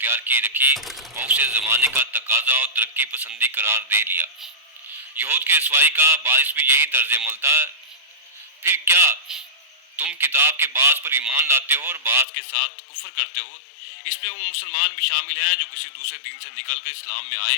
کی رکھی اور اسے زمانے کا تقاضا اور ترقی پسندی قرار دے لیا۔ یہود کی رسوائی کا باعث بھی یہی طرز عمل تھا۔ پھر کیا تم کتاب کے بعض پر ایمان لاتے ہو اور بعض کے ساتھ کفر کرتے ہو؟ اس میں وہ مسلمان بھی شامل ہیں جو کسی دوسرے دین سے نکل کر اسلام میں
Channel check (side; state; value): right; drops out; at 12.2 s